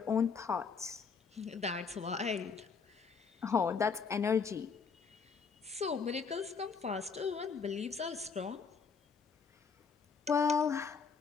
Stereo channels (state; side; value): quieter; right; 5.6 dB